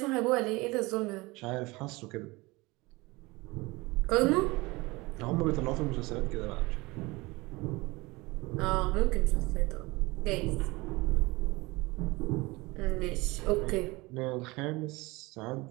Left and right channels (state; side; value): quieter; left; 23.0 dB